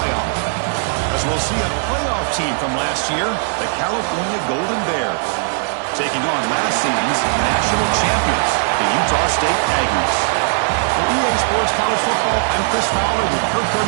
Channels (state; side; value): silent; left; 60 dB below the other